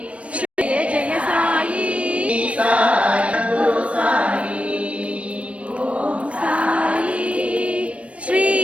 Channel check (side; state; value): left; late; 0.063 ms